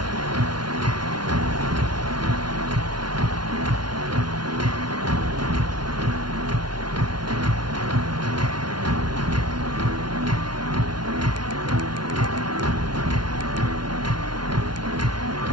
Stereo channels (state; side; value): late; left; 0.70 ms